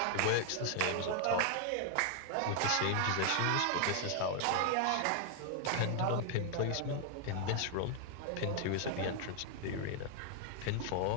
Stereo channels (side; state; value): both; different; correlation 0.00